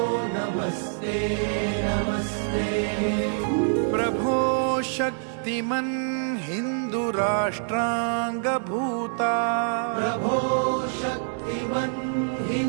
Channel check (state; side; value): silent; left; digital silence